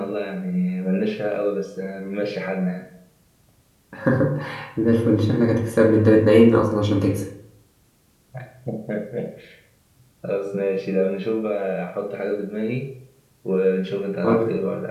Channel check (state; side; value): identical; both; correlation 1.00